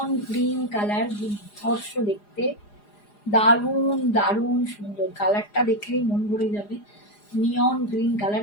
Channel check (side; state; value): right; late; 4.9 ms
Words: গ্রিন কালার, দুর্ধর্ষ দেখতে, দারুণ দারুণ সুন্দর। কালারটা দেখলেই মন ভরে যাবে। নিয়ন গ্রিন কালার,